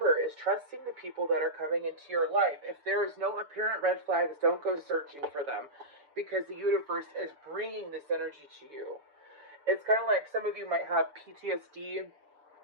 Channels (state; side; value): late; left; 6.9 ms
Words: is trusting the people that are coming into your life. If there is no apparent red flags, don't go searching for them, because the universe is bringing this energy to you. It's kind of like some of you might have PTSD